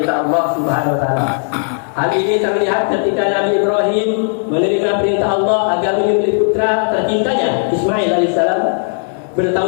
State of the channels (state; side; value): silent; right; digital silence